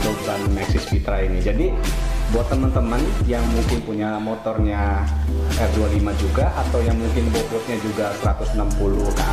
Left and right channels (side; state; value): both; identical; correlation 1.00